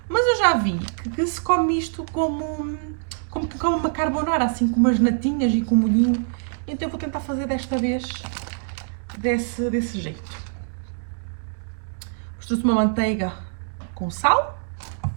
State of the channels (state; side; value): silent; left; digital silence